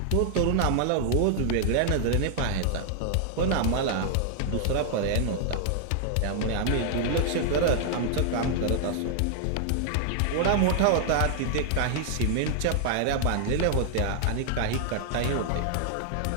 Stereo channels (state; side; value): different; both; correlation 0.00